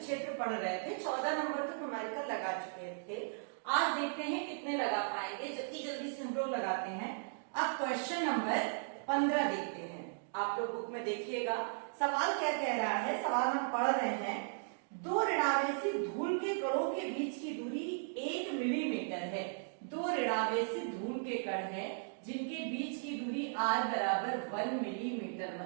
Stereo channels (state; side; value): silent; left; digital silence